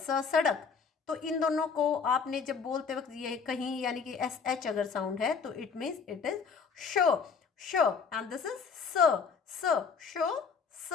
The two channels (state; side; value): quieter; right; 5.7 dB